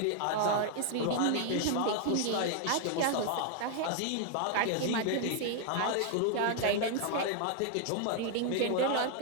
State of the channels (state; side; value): different; both; correlation 0.00